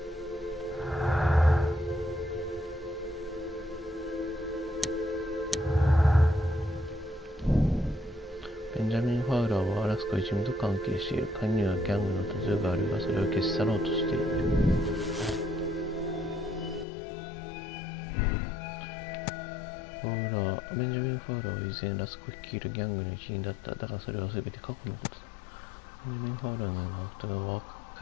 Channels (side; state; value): right; drops out; at 16.9 s